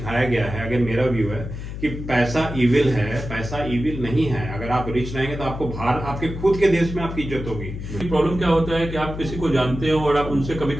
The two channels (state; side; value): noise; left; hum, 8 dB below the sound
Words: गया है, अगर मेरा व्यू है कि पैसा इविल है, पैसा इविल नहीं है। अगर आप रिच रहेंगे तो आपको बाहर आपके खुद के देश में आपकी इज्जत होगी। प्रॉब्लम क्या होता है कि आप किसी को जानते हो और आप उनसे कभी